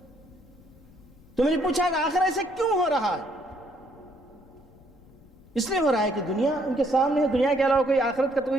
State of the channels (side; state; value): left; noise; rumble, 25 dB below the sound